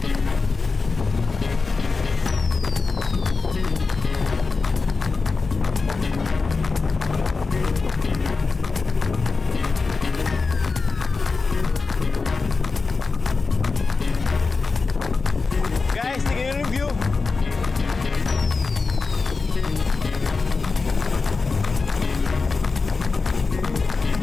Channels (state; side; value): quieter; right; 4.3 dB